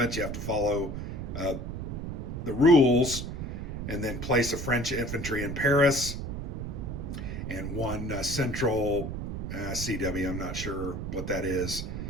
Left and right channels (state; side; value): noise; right; rumble, 5 dB below the sound